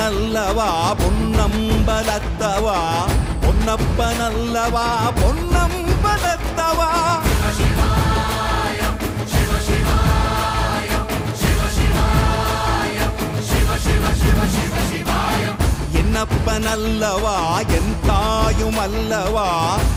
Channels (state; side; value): identical; both; correlation 1.00